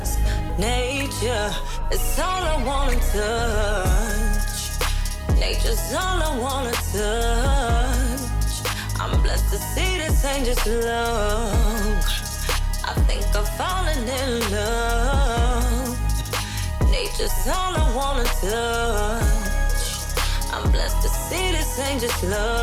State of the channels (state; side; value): identical; both; correlation 1.00